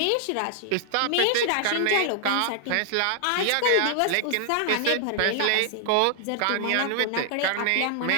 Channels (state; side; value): different; both; correlation 0.00